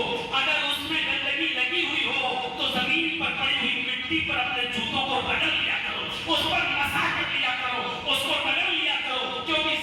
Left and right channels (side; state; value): both; identical; correlation 1.00